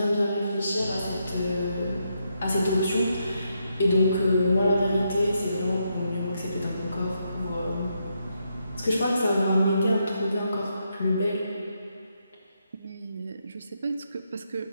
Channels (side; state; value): both; inverted; correlation -0.80